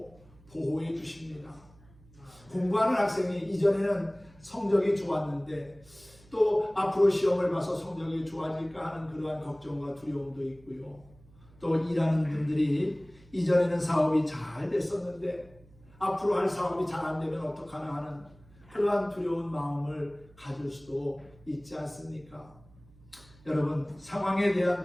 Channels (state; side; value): noise; right; hum, 26 dB below the sound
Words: 보호해 주십니다. 공부하는 학생이 이전에는 성적이 좋았는데 또 앞으로 시험을 봐서 성적이 좋아질까 하는 그러한 걱정과 두려움도 있고요. 또 일하는 분들이 이전에는 사업이 잘 됐었는데 앞으로 할 사업이 잘 안 되면 어떡하나 하는 그러한 두려운 마음을 가질 수도 있지 않습니까? 여러분, 상황에 대한